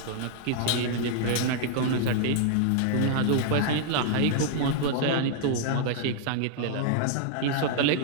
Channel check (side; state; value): both; different; correlation -0.01